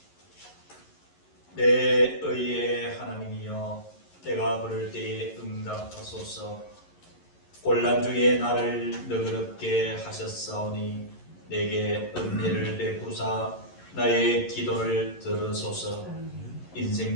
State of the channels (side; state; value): right; late; 11 ms